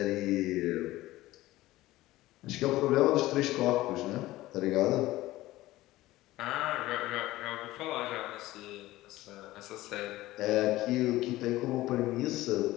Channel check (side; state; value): right; quieter; 17.1 dB